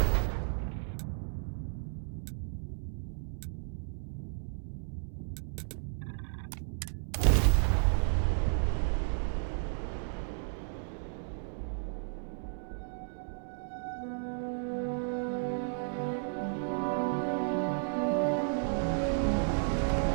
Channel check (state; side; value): silent; left; digital silence